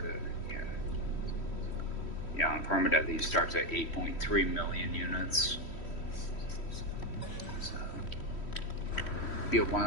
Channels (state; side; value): late; right; 3.1 ms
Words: yeah. Yeah, on Permadeath, he starts at 8.3 million units. So, it'll be a